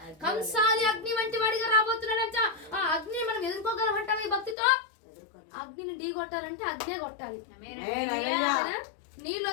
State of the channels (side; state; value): right; drops out; at 4.5 s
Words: కంసాలి అగ్ని వంటి వాడిగా రాబోతున్నాడంట. ఆ అగ్నిని మనం ఎదుర్కోగలమంటాం ఈ భక్తితో? అగ్నిని ఢీ కొట్టాలంటే అగ్నే కొట్టాలి. నీళ్ళు